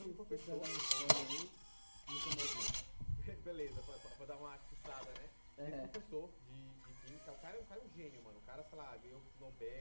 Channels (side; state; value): both; inverted; correlation -1.00